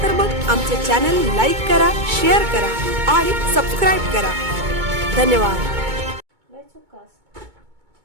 तर मग आमचे चॅनल लाईक करा, शेअर करा आणि सबस्क्राइब करा। धन्यवाद।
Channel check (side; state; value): left; late; 2.2 ms